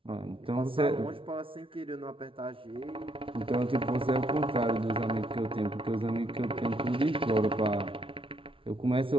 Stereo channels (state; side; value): late; left; 0.25 ms